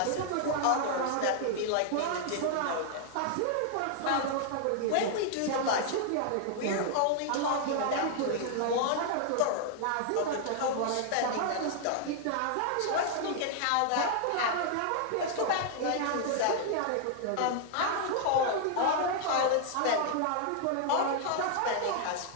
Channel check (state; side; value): different; both; correlation 0.00